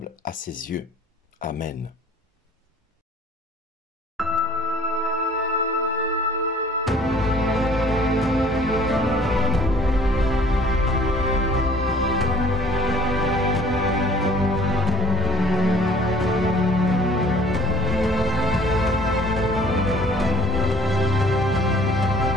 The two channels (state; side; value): normal; both; correlation 0.52